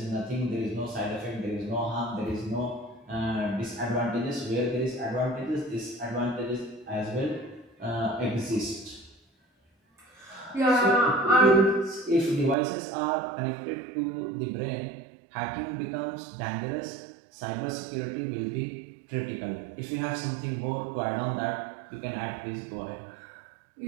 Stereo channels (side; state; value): left; drops out; at 12.6 s